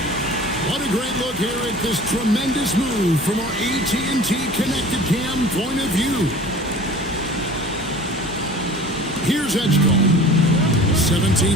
What a great look here at this tremendous move from our AT&T Connected Cam point of view. Here's Edgecombe.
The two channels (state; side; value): normal; both; correlation 0.43